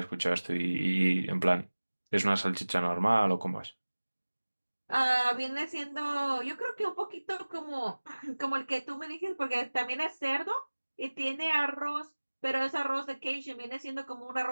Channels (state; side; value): inverted; both; correlation -1.00